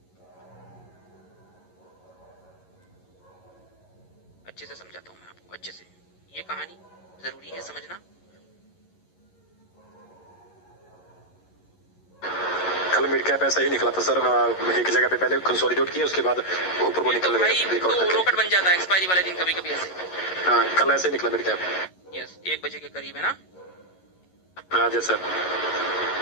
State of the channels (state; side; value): late; right; 11 ms